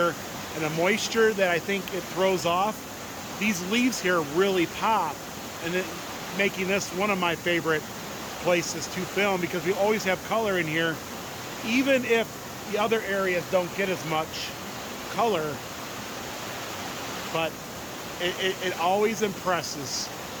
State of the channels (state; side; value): identical; both; correlation 1.00